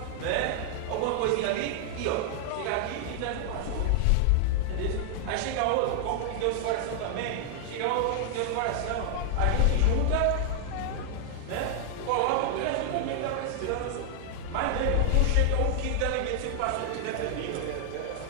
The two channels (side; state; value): both; different; correlation 0.00